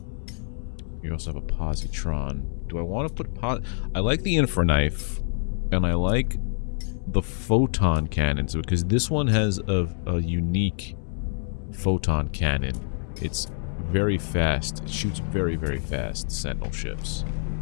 You also have a positron. Do I want to put I like the infraknife, and I like the photon cannons because this one has a unique photon cannon. It's very fast. It shoots very, very fast. Sentinel ships.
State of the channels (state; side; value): silent; right; 61 dB below the other